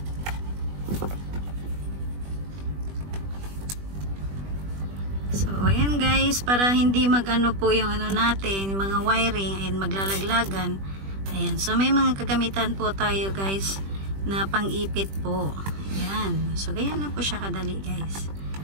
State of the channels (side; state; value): left; late; 20 ms